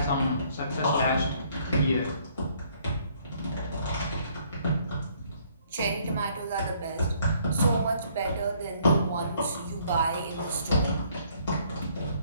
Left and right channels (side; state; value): both; inverted; correlation -0.64